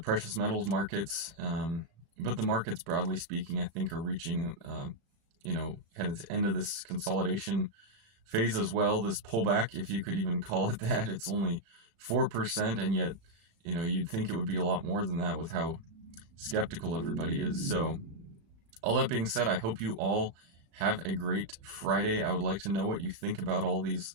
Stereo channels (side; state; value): left; late; 36 ms